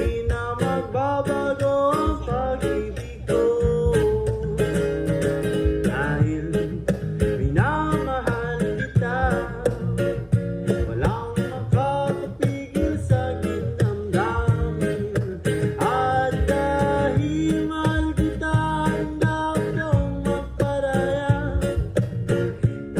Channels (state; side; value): identical; both; correlation 1.00